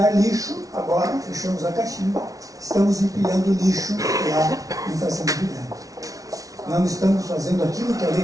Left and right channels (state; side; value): late; left; 0.17 ms